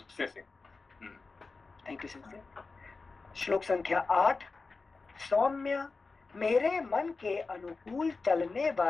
से। Thank you sir. श्लोक संख्या 8। सौम्य, मेरे मन के अनुकूल चलने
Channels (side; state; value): right; quieter; 4.1 dB